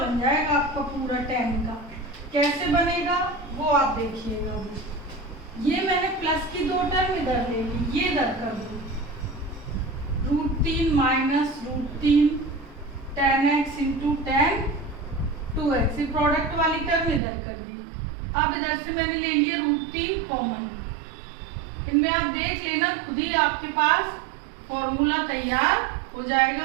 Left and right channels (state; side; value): drops out; left; at 17.2 s